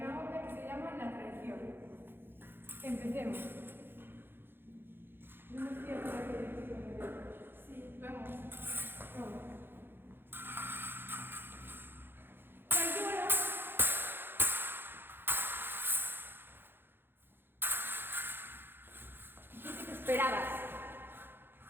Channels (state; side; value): late; left; 0.10 ms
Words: obra que se llama La traición. Empecemos. No estoy a por aquí. Sí, vamos. Vamos. ¡Pañuelo! ¿Qué te esperabas?